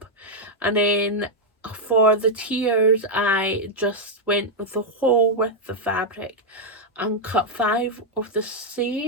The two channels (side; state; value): both; normal; correlation -0.01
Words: and then for the tiers I just went with the whole width of fabric and cut 5 of the